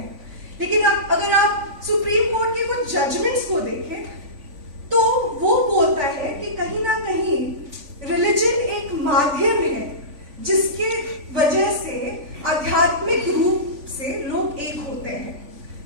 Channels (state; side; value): late; left; 3.5 ms